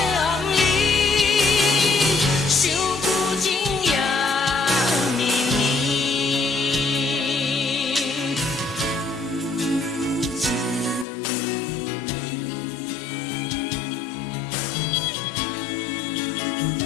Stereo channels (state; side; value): drops out; right; at 11.1 s